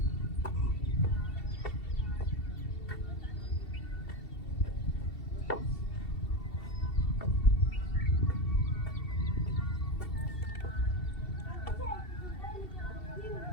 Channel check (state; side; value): late; right; 2.7 ms